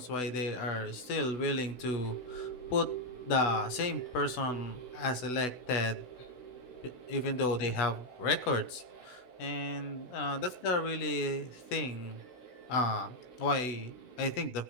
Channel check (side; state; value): right; late; 16 ms